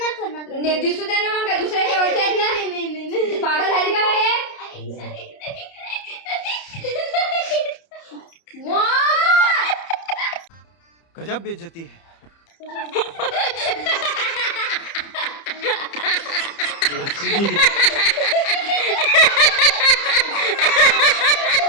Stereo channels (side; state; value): right; late; 30 ms